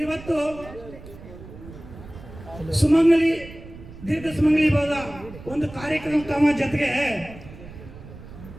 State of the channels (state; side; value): noise; right; rumble, 16 dB below the sound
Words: ಇವತ್ತು ಸುಮಂಗಲಿ ದೀರ್ಘ ಸುಮಂಗಲಿ ಭವದ ಒಂದು ಕಾರ್ಯಕ್ರಮ ಜೊತೆಗೆ